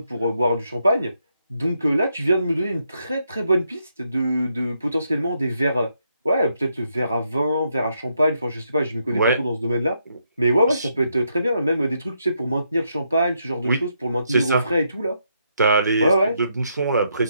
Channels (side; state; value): both; inverted; correlation -0.78